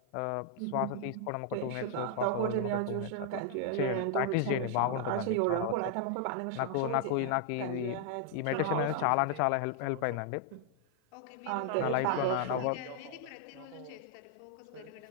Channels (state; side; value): different; both; correlation 0.00